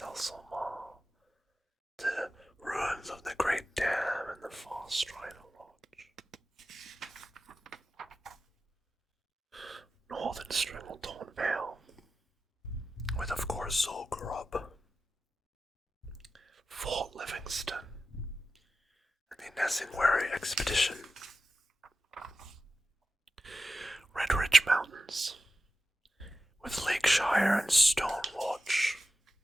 The ruins of the Great Dam and the Far Strider Lodge. Northern Stranglethorn Vale, with of course Zul'Gurub, Fort Livingston, and the Nesingwary Expedition. Red Ridge Mountains, with Lakeshire and Stonewatch.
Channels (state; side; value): normal; both; correlation 0.93